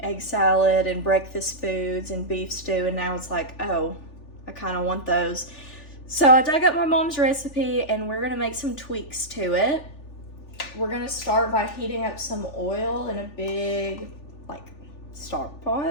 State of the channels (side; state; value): right; late; 3.4 ms